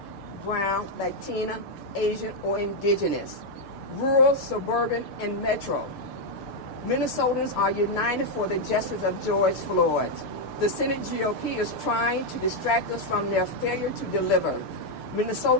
brown, Latina, Asian, or indigenous, rural, suburban, and metro, Minnesotans are united for the justice of George Floyd. The Senate GOP is trying to distract us from their failure to deliver.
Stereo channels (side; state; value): right; late; 6.7 ms